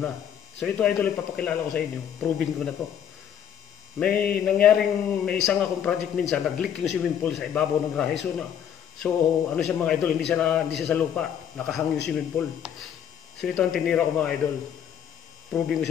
So ito idol, ipapakilala ko sa inyo. Proving ko na to. May isang akong project minsan, nag-leak yung swimming pool sa ibabaw ng grahe. So ano siya mga idol, hindi siya sa lupa. Nakahang yung swimming pool. So ito ang tinira ko mga idol. Proving ko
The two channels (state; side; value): quieter; right; 9.1 dB